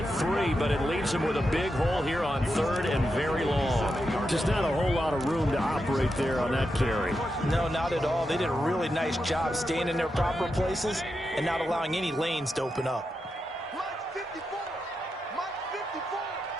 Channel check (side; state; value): both; normal; correlation 0.87